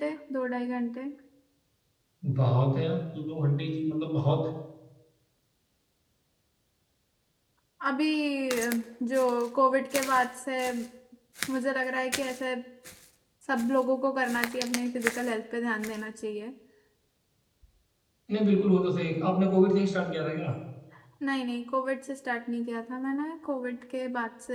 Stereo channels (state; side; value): identical; both; correlation 1.00